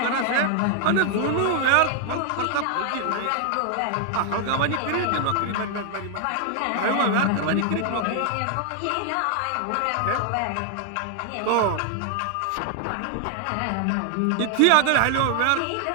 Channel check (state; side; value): different; both; correlation 0.00